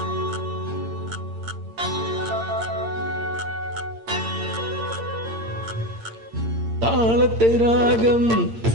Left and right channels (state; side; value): late; left; 8.8 ms